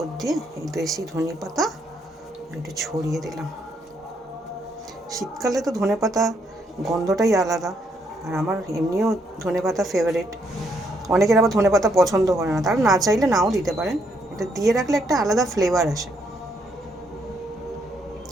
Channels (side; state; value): both; normal; correlation 0.73